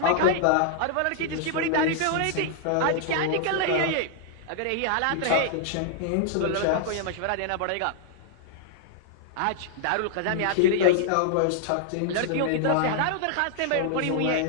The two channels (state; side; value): different; both; correlation -0.01